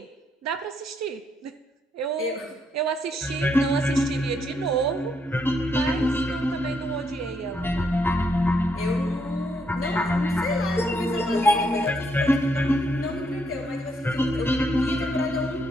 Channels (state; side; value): normal; both; correlation 0.75